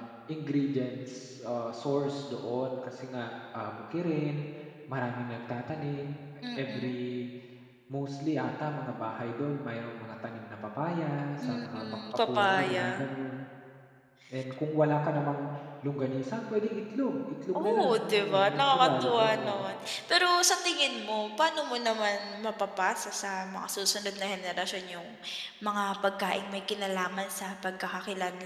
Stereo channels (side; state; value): both; identical; correlation 1.00